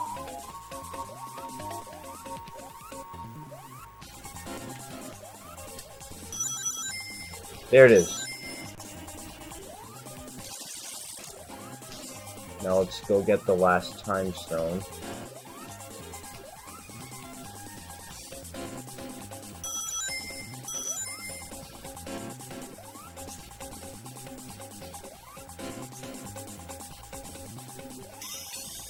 There it is. Now let's go get the last time stone.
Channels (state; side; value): identical; both; correlation 1.00